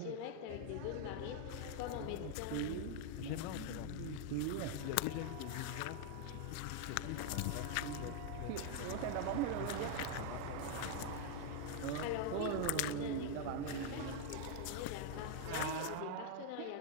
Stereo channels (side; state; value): both; different; correlation 0.00